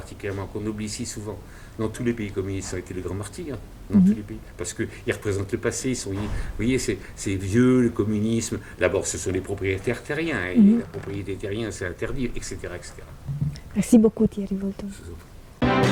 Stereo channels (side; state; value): both; identical; correlation 1.00